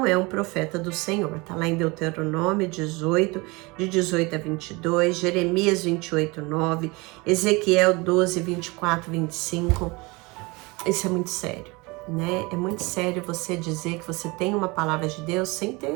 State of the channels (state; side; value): quieter; left; 25.3 dB